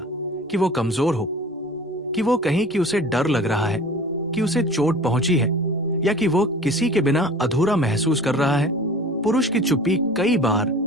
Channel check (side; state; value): both; normal; correlation 0.42